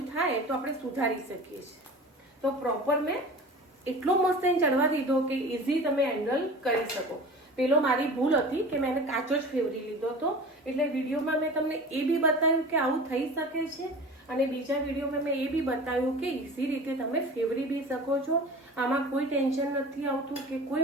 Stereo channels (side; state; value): both; normal; correlation 0.37